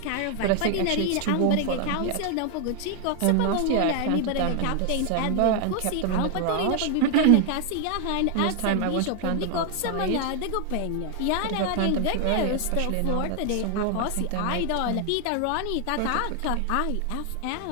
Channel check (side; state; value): both; different; correlation 0.00